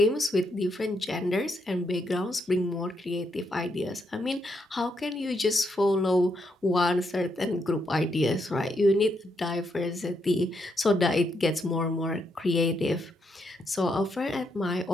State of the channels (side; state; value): both; normal; correlation 0.78